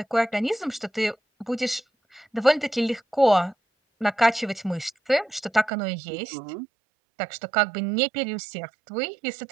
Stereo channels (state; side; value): drops out; left; at 5.7 s